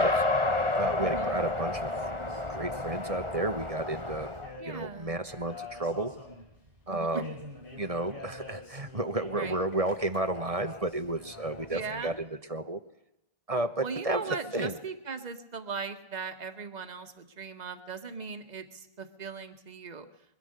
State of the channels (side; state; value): left; late; 2.0 ms